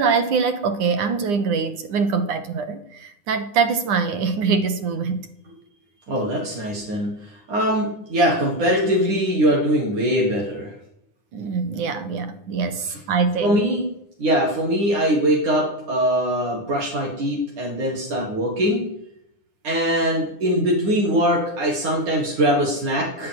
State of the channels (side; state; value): left; late; 9.9 ms